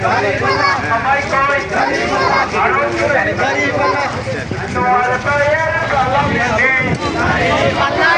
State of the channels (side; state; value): both; identical; correlation 1.00